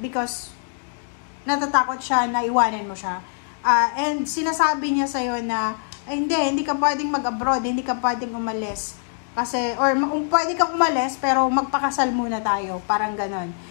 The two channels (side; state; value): right; silent; digital silence